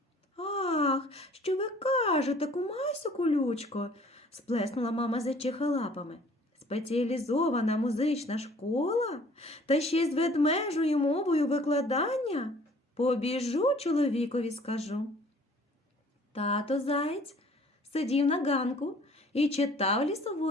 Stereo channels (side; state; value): both; normal; correlation 0.54